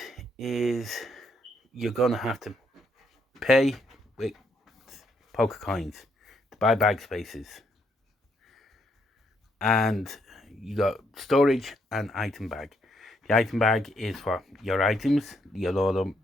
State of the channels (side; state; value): both; normal; correlation 0.74